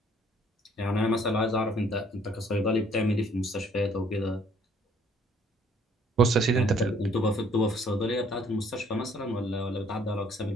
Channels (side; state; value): both; normal; correlation 0.61